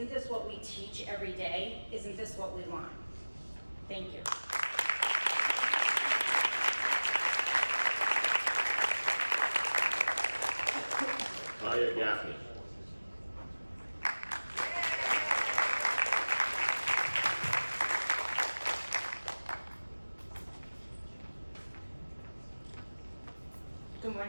this what we teach every day? Isn't this what we want? Thank you. hire Daphne. Good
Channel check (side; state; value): both; inverted; correlation -1.00